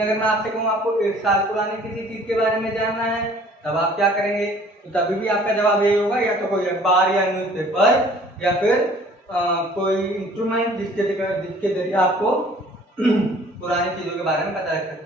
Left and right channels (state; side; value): normal; both; correlation 0.53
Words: अगर मैं आपसे कहूँ आपको 1 साल पुरानी किसी चीज के बारे में जानना है तब आप क्या करेंगे? तो तभी भी आपका जवाब यही होगा, या तो कोई अखबार या न्यूज़पेपर या फिर कोई इंस्ट्रूमेंट जिसके जरिए आपको पुरानी चीजों के बारे में पता लग